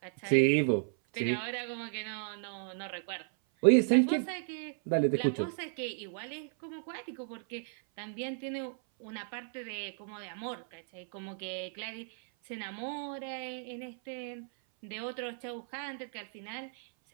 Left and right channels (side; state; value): left; silent; 55 dB below the other